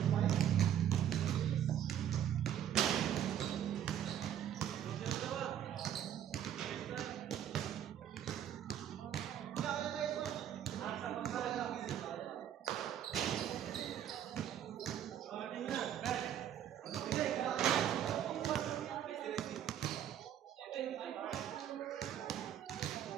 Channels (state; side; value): quieter; left; 10.3 dB